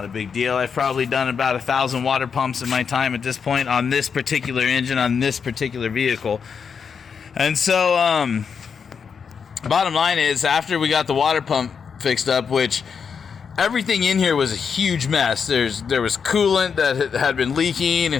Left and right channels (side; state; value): right; quieter; 6.4 dB